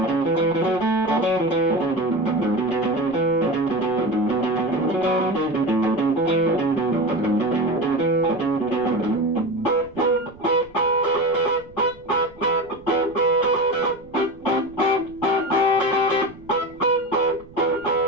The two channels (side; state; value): right; noise; rumble, 24 dB below the sound